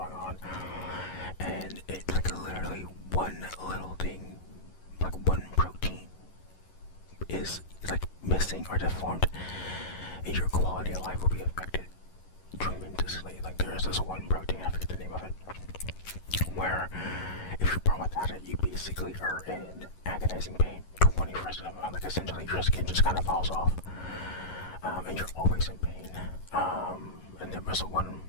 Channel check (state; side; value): late; right; 11 ms